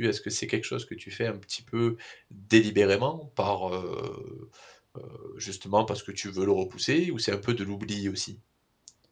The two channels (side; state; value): both; identical; correlation 1.00